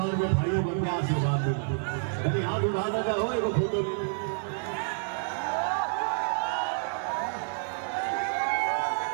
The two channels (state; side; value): silent; left; digital silence